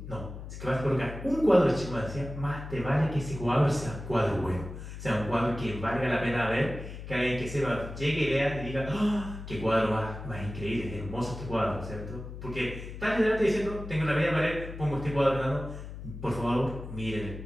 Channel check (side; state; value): left; noise; hum, 10 dB below the sound